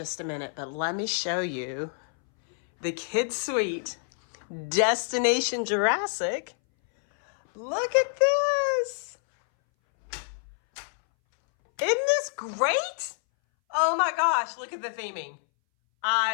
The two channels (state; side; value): silent; right; 60 dB below the other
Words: a minute, but let me show you the kids' suite, Destination Jurassic. Look at this. Isn't this great? Oh my gosh, look at the theming.